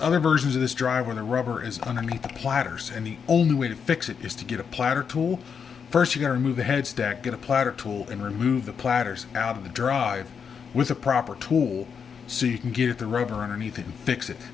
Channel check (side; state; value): right; quieter; 6.6 dB